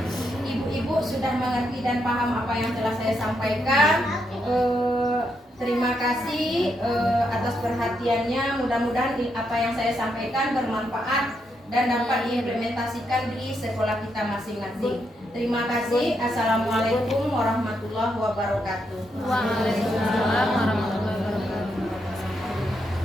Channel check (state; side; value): normal; both; correlation 0.80